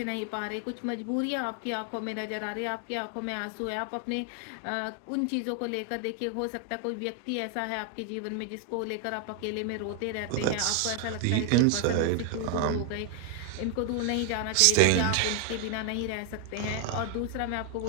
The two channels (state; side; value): different; both; correlation 0.00